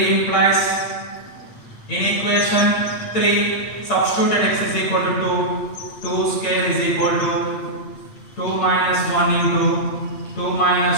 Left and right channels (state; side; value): late; right; 8.7 ms